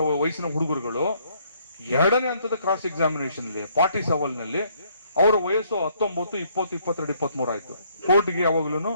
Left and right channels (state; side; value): inverted; both; correlation -0.67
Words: ವಯಸ್ಸಿನ ಹುಡುಗರುಗಳು 2ನೇ ಹಂತದ ಕ್ರಾಸ್ ಎಕ್ಸಾಮಿನೇಷನ್ ಅಲ್ಲಿ ಪಾರ್ಟಿ ಸವಾಲ್ ನಲ್ಲಿ ಅವರ ವಯಸ್ಸು 19, 20, 22, 23 ಆಯ್ತು. ಕೋರ್ಟ್ಗೆ ಯಾವಾಗ್ಲೂ